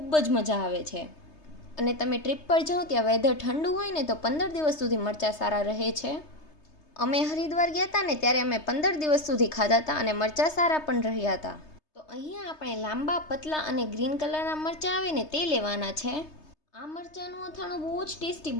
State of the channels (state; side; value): late; right; 3.3 ms